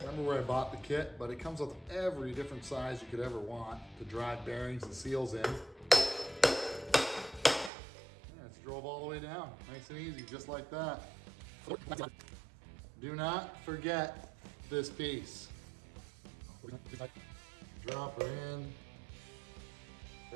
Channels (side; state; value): left; drops out; at 7.7 s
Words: remember where I bought the kit, but it comes with every different size you could ever want to drive bearings and seals in. Yeah, it's drove all the way down. Nice and easy, just like that. Do not forget this piece. Drop her in.